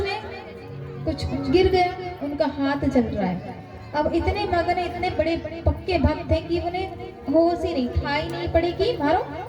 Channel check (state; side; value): identical; both; correlation 1.00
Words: कुछ गिर गए, उनका हाथ जल रहा है। अब इतने मगन इतने बड़े पक्के भक्त थे कि उन्हें होश ही नहीं, ठाई नहीं पड़ी कि मारो